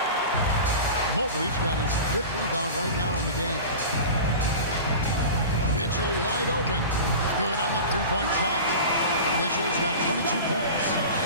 Mobley's got his 5th rebound right now in the game. Mitchell wide open. Good on the three-point shot. Mitchell's got 22 points.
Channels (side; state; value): both; inverted; correlation -0.33